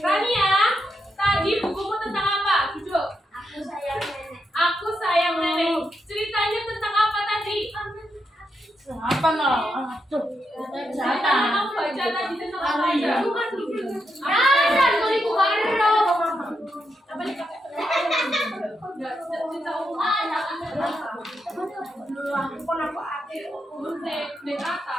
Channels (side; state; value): both; normal; correlation 0.83